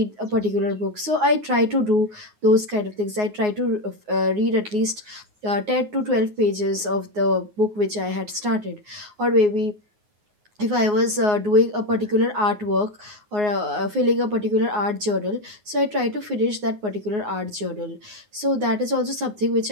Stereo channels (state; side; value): late; left; 9.5 ms